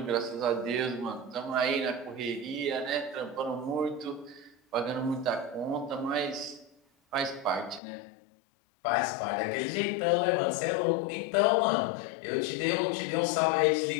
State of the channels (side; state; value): right; drops out; at 7.8 s